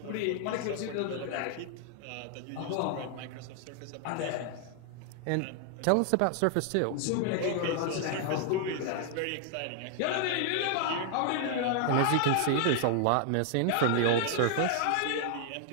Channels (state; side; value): different; both; correlation 0.00